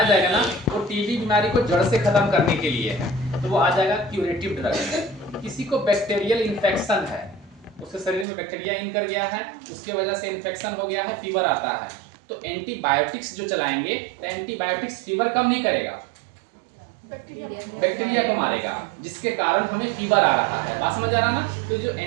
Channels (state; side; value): drops out; left; at 8.2 s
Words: जाएगा ना, वो टीबी बीमारी को जड़ से खत्म करने के लिए है, तो वो आ जाएगा क्यूरेटिव ड्रग। किसी को बैक्टीरियल इन्फेक्शन है, उसके शरीर में बैक्टीरिया इन कर गया है, उसके वजह से इन्फेक्शन हो गया है, फीवर आता है, तो एंटीबायोटिक्स जो चलाएंगे, तो एंटीबायोटिक्स फीवर कम नहीं करेगा, बैक्टीरिया को मारेगा, जिसके कारण हमें फीवर आ रहा है। बात समझ आ रहा ना? तो जो